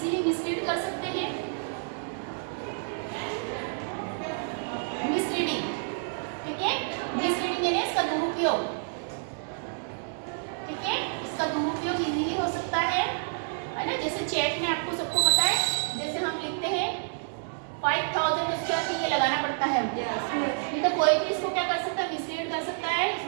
मिसलीड कर सकते हैं, मिसलीडिंग। ठीक है, मिसलीडिंग यानी इसका दुरुपयोग। ठीक है, इसका दुरुपयोग इजीली हो सकता है ना, जैसे चेक में आपको सबको पता है, जैसे हम लिखते हैं 5000, उसके बाद ये लगाना पड़ता है, नहीं तो कोई भी इसको क्या कर सकता है, मिसलीड कर सकता है,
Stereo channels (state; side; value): silent; left; 59 dB below the other